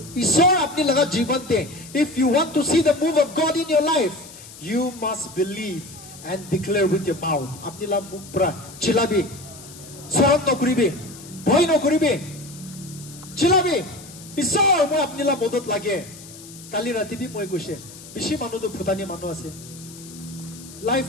ईश्वर अपनी लगा जीवन दे if you want to see the move of God in your life you must believe and declare with your mouth अपनी ला मुख पर चिल्लाबे शरम न करिबे भय न करिबे चिल्लाबे ঈশ্বৰ মই আপনিলা মদত লাগে কালি ৰাতি বি মই কৈছে বেছি মানুহ তো ফুটানি মানুহ আছে লাইফ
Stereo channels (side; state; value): left; noise; hiss, 17 dB below the sound